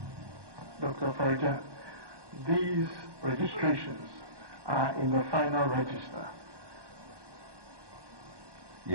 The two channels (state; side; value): late; left; 1.2 ms